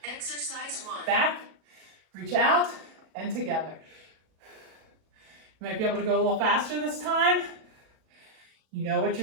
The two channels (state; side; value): late; left; 37 ms